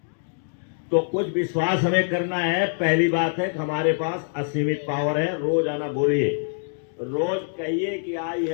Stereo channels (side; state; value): right; silent; digital silence